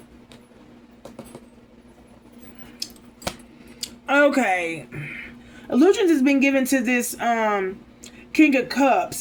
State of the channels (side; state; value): both; identical; correlation 1.00